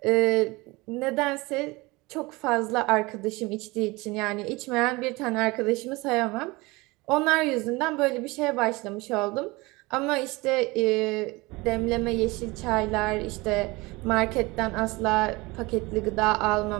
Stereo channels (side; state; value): left; quieter; 23.1 dB